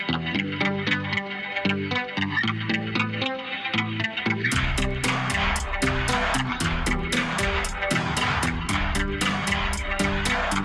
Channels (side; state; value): both; identical; correlation 1.00